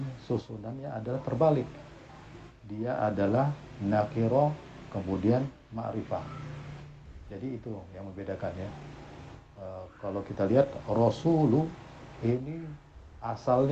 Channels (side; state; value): both; identical; correlation 1.00